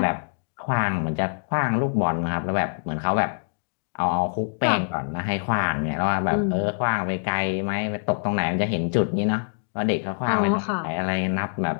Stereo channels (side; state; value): right; silent; digital silence